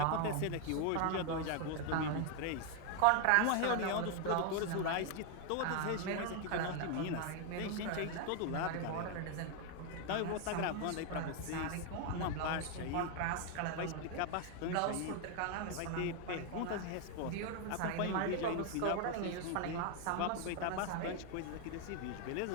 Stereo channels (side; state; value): both; different; correlation 0.01